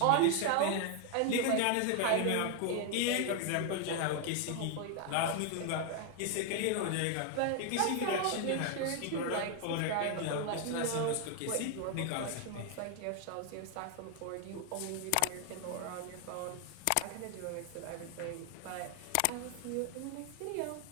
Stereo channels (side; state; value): both; different; correlation 0.01